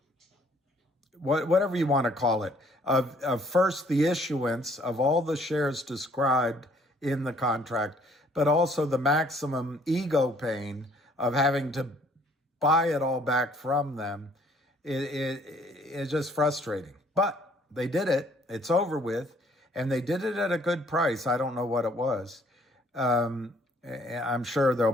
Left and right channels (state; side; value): normal; both; correlation 0.61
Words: whatever you want to call it, of first the issuance of all the shares described in the contract, but also the maximum ego pain of having to buy it all back from them. It's just frustrating. But they did it. It's over with. And they did it at a good price. I don't know what it was. I'm sure there'll